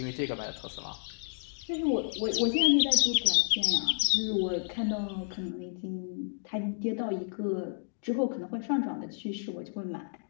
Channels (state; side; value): silent; right; digital silence